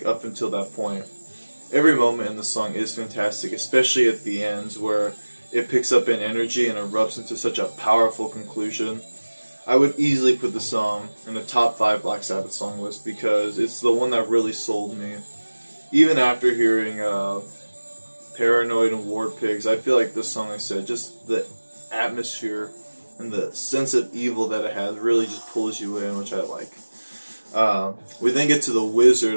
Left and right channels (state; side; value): inverted; both; correlation -1.00